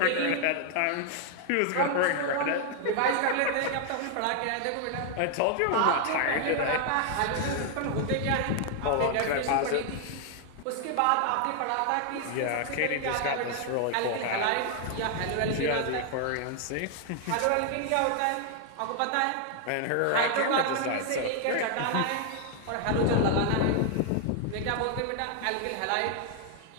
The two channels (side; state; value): both; different; correlation 0.00